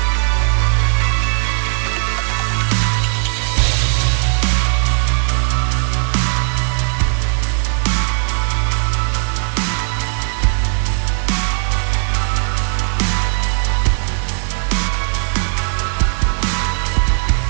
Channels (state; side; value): silent; left; 57 dB below the other